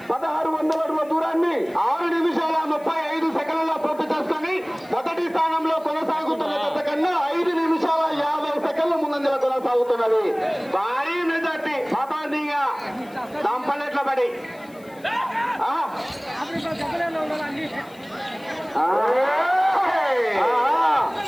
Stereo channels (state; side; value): noise; left; hiss, 27 dB below the sound